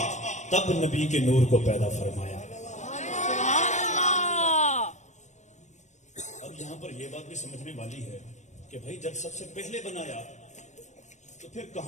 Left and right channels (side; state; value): right; late; 0.34 ms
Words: تب نبی کے نور کو پیدا فرمایا۔ سبحان اللہ۔ اب یہاں پر یہ بات بھی سمجھنے والی ہے کہ بھائی جب سب سے پہلے بنایا تو پھر